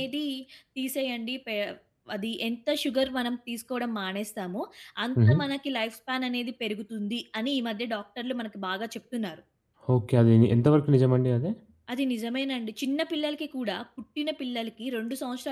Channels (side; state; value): both; identical; correlation 1.00